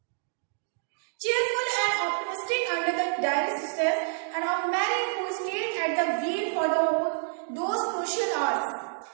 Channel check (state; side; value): silent; left; digital silence